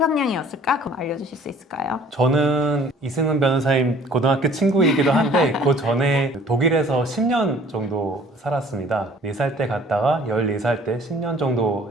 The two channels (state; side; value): normal; both; correlation 0.52